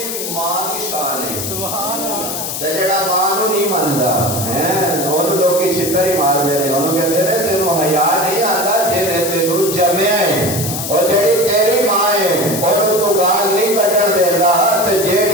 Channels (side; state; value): left; noise; hiss, 5 dB below the sound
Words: ماں کی شان ہے. سبحان اللہ. تے جڑا ماں نو نہیں ماندا ہیں اونوں لوکی چھتر ہی مار دے نے, اونوں کہندے نے تینوں حیا نہیں آندا جے نے تینوں جمیا ہے. اور جیڑی تیری ماں ہے اونوں تو گال نہیں کڈن دیندا. تے